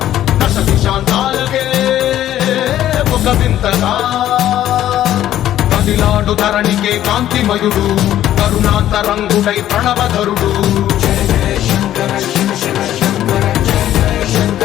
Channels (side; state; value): right; quieter; 12.4 dB